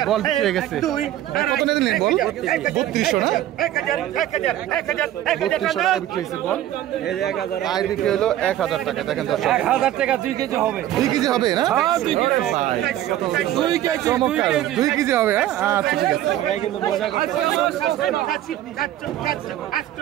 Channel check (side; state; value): left; quieter; 12.9 dB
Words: বল বিক্রি হয়ে গেছে কত নিলেন বল? 3200 না 3200 টাকা বিক্রি হয়েছে বল। আইড বিক্রি হলো 1000 টাকা। দেখেন দর্শক 1000 টাকা 2 কেজি হবে 2 কেজি হবে না? হ্যাঁ 2 কেজি ভাই, 2 কেজি চমৎকার 2 কেজি হবে। আচ্ছা ঠিক আছে কিন্তু মজা করতে